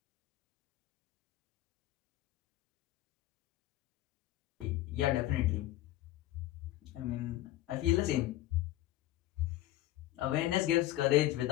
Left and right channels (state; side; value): quieter; right; 14.8 dB